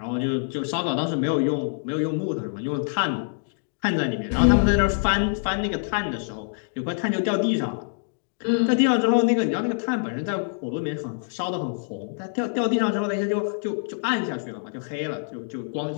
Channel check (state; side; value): silent; right; digital silence